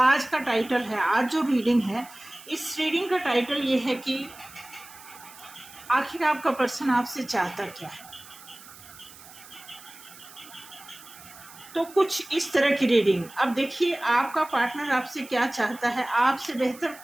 का टाइटल है, आज जो रीडिंग है, इस रीडिंग का टाइटल ये है कि आखिर आपका पर्सन आपसे चाहता क्या है। तो कुछ इस तरह की रीडिंग। अब देखिए, आपका पार्टनर आपसे क्या चाहता है, आपसे बेहतर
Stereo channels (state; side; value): noise; right; hiss, 19 dB below the sound